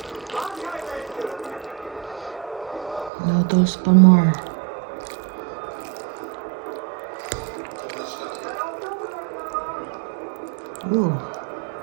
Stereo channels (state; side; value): drops out; left; at 3.1 s